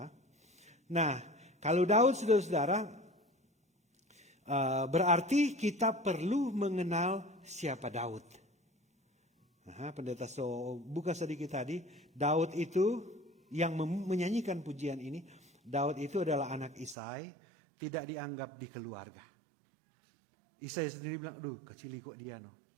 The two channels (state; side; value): drops out; left; at 16.9 s